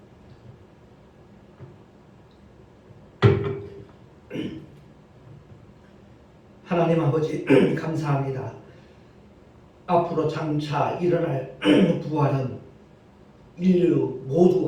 하나님 아버지 감사합니다. 앞으로 장차 일어날 부활은 인류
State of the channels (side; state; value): both; identical; correlation 1.00